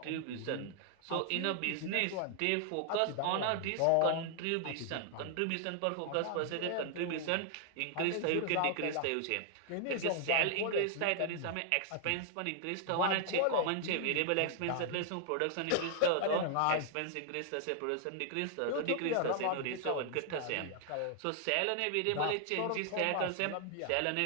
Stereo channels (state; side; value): different; both; correlation 0.00